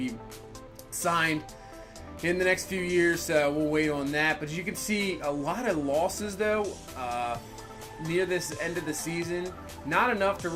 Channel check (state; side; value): identical; both; correlation 1.00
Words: signed in the next few years, so we'll wait on that. But as you can see, a lot of losses, though, near this end of the season. Not enough to